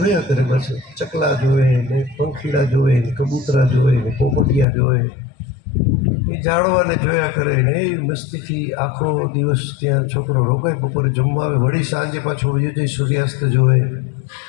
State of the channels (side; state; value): right; drops out; at 4.7 s